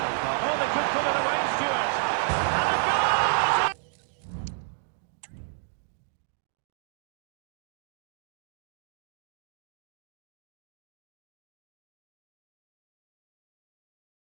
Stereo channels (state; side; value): silent; left; digital silence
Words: far. Oh, they could put it away, Stuart. And a goal!